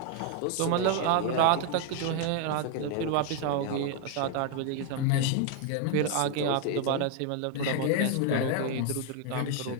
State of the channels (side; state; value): both; different; correlation 0.01